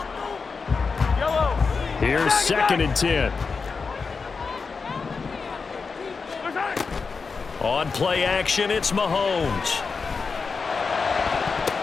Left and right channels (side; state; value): right; quieter; 4.9 dB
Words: Here's second and 10. On play action, it's Mahomes.